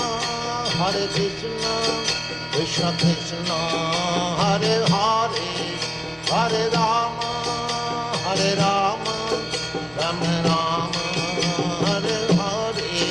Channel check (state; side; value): identical; both; correlation 1.00